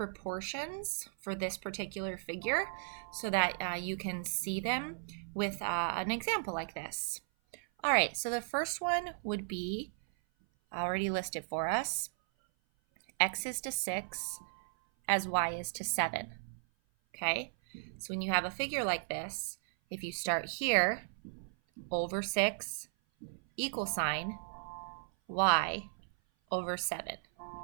for this particular figure so that you can see them with an example like this. All right, so the first one would be already listed for us. X is to 6 as y is to 7. Okay, so when you have a figure like this, if you start here, over 6 equal sign y over 7.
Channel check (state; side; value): silent; left; 54 dB below the other